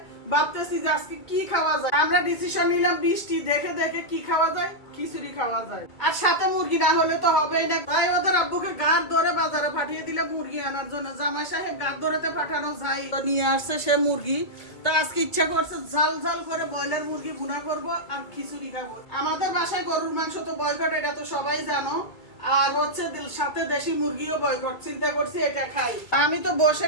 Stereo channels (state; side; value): late; right; 2.3 ms